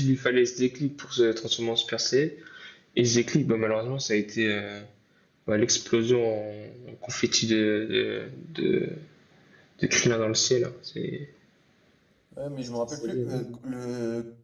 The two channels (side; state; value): both; identical; correlation 1.00